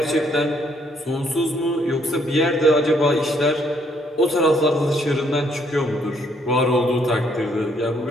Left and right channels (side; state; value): both; normal; correlation 0.69